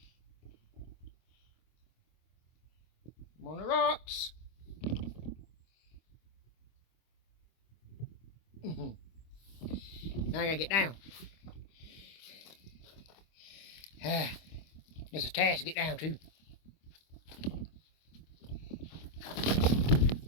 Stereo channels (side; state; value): right; late; 25 ms